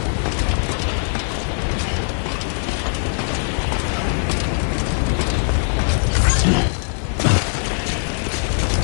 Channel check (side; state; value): right; silent; 58 dB below the other